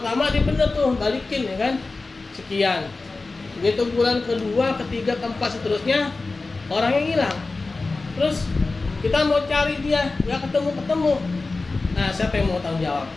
dia bener tuh balikin ya kan, sekian. Begitu bulan kedua, ketiga, keempat seterusnya orangnya hilang. Terus kita mau cari dia, nggak ketemu. Nah, siapa yang mau tanggung jawab?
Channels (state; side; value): quieter; right; 3.6 dB